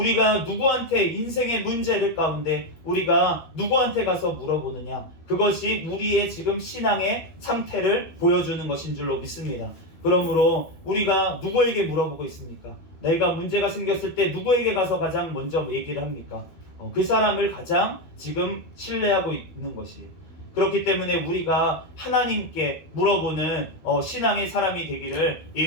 누구한테 인생의 문제를 가운데 우리가 누구한테 가서 물어보느냐, 그것이 우리의 지금 신앙의 상태를 보여주는 것인 줄로 믿습니다. 그러므로 우리가 누구에게 물어보고 있습니까? 내가 문제가 생겼을 때 누구에게 가서 가장 먼저 얘기를 합니까? 그 사람을 가장 지금 신뢰하고 있는 것이. 그렇기 때문에 우리가 하나님께 물어보는 신앙의 사람이 되기를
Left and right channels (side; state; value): right; late; 12 ms